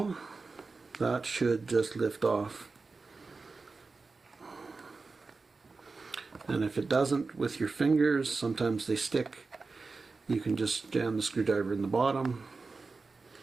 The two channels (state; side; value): quieter; left; 4.1 dB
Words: that should just lift off. And if it doesn't with your fingers, sometimes they stick, you can just jam the screwdriver in the bottom